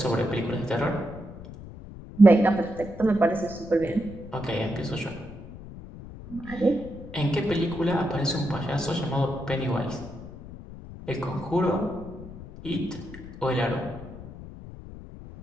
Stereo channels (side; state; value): left; noise; rumble, 14 dB below the sound